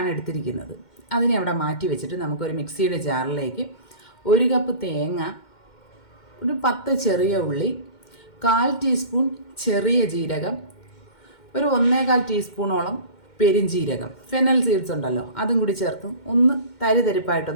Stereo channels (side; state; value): right; late; 2.1 ms